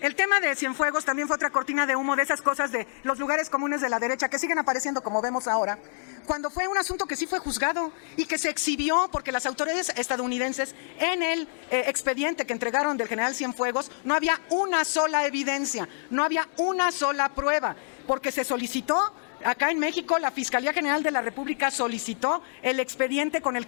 el tema de Cienfuegos también fue otra cortina de humo de esas cosas de los lugares comunes de la derecha que siguen apareciendo como vemos ahora, cuando fue un asunto que sí fue juzgado y que se exhibió porque las autoridades estadounidenses en el expediente que entregaron del general Cienfuegos no había una sola evidencia, no había una sola prueba, porque se solicitó. Acá en México, la Fiscalía General de la República solicitó el expediente con el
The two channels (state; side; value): silent; right; digital silence